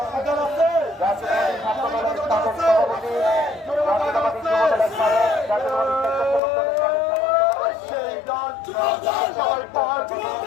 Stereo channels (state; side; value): drops out; right; at 6.4 s